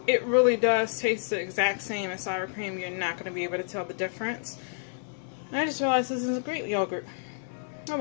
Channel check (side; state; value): right; silent; digital silence